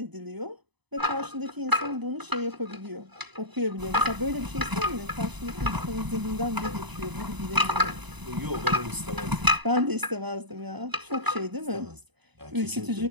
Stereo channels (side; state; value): left; late; 0.99 ms